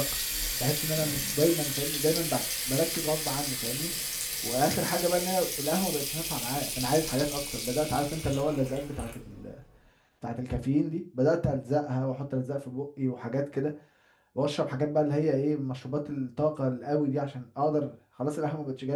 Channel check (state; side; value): identical; both; correlation 1.00